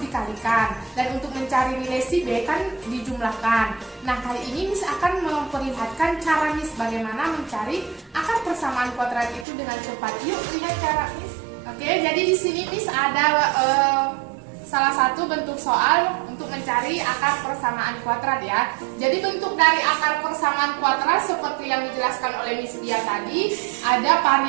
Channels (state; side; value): drops out; left; at 9.5 s